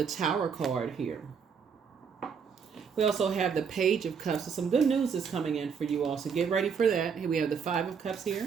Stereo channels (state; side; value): quieter; left; 6.4 dB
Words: Tower card here. We also have the Page of Cups. So some good news is coming in for you all, so get ready for that. Here we have the 5 of Cups